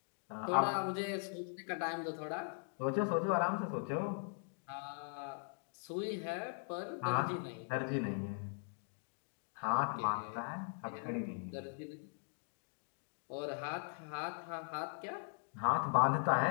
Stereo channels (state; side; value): silent; right; 51 dB below the other